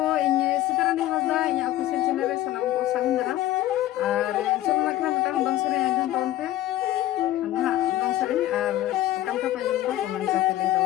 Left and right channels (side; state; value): right; quieter; 14.4 dB